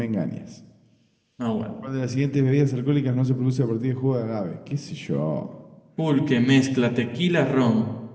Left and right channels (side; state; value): both; identical; correlation 1.00